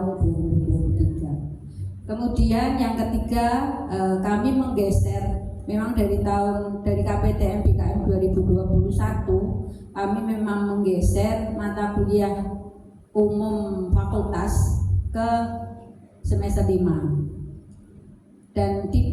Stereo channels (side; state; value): both; identical; correlation 1.00